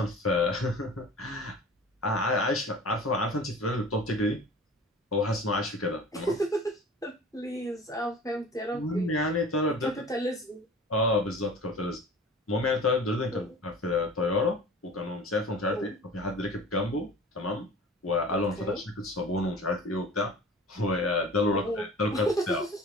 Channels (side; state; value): both; normal; correlation 0.41